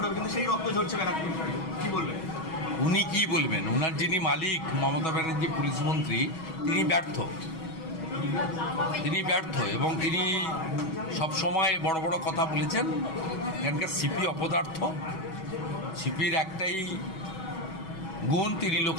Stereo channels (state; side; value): late; right; 6.2 ms